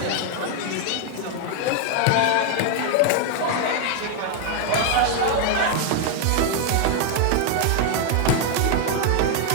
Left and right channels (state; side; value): different; both; correlation 0.00